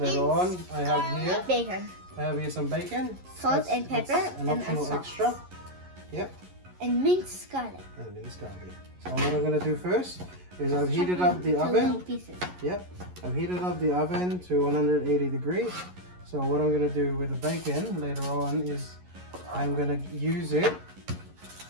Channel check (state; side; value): late; left; 11 ms